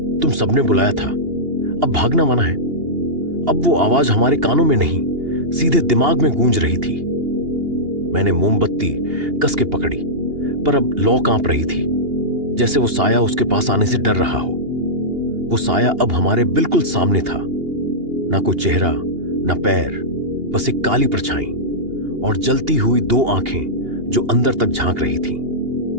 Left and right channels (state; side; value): late; left; 2.8 ms